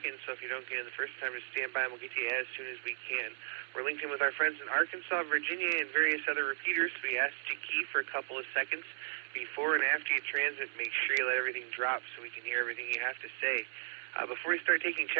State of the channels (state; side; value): silent; left; 54 dB below the other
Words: so if you don't get in the first time, just stand by and we'll get to you as soon as we can. We're linked in with our friends in Arkansas, Virginia, and various other repeaters, so we ask you to key for a couple of seconds before and after you transmit. Make sure you let everything drop so we can hear everything you have to say. Before we start taking